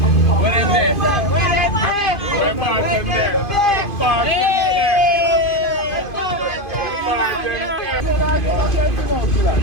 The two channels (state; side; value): late; right; 2.5 ms